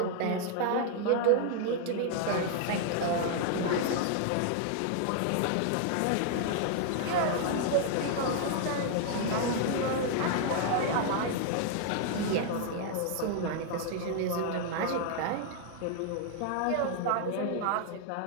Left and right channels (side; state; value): both; different; correlation 0.00